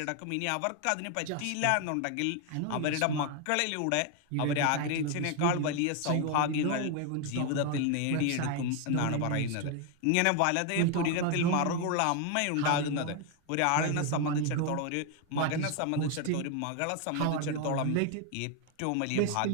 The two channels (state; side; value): different; both; correlation 0.01